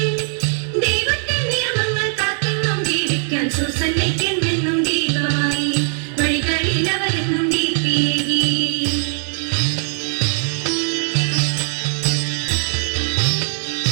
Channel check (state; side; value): silent; left; digital silence